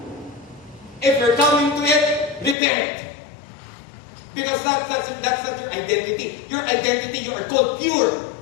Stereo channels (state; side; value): drops out; right; at 2.6 s